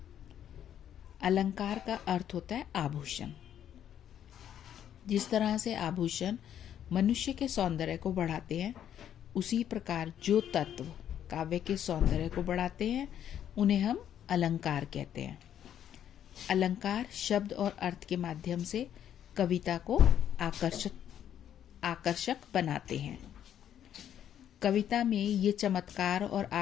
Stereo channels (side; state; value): right; quieter; 10.0 dB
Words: अलंकार का अर्थ होता है आभूषण। जिस तरह से आभूषण मनुष्य के सौंदर्य को बढ़ाते हैं, उसी प्रकार जो तत्व काव्य के सौंदर्य को बढ़ाते हैं उन्हें हम अलंकार कहते हैं। अलंकार शब्द और अर्थ के माध्यम से कविता को आकर्षक बनाते हैं। कविता में ये चमत्कार और